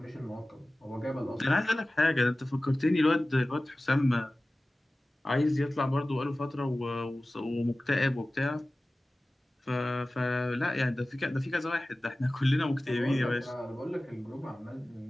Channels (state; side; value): normal; both; correlation 0.97